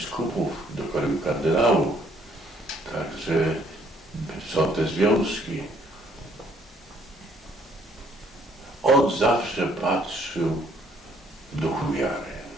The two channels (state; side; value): normal; both; correlation 0.65